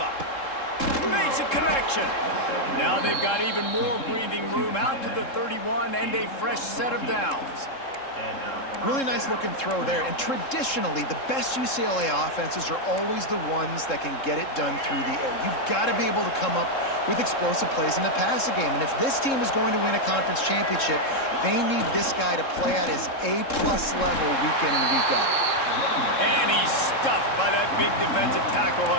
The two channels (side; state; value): right; late; 3.7 ms